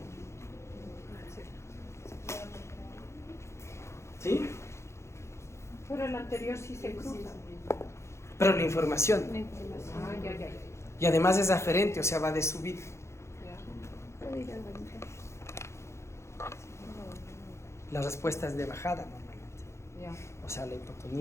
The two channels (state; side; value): late; right; 0.13 ms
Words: ¿Sí? Pero el anterior nervios sí se cruzan. Pero la información. La información. Ah, ya. Y además es aferente, o sea, va de subida. Puedo ir a dormir. La respuesta es de bajada normalmente. Ya. O sea, la